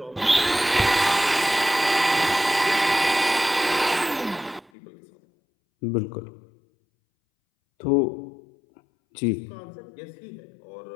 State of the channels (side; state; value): right; drops out; at 4.7 s